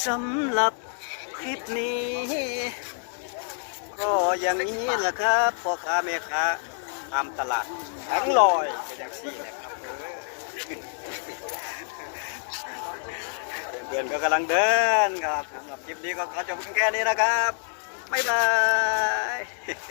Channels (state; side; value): silent; right; digital silence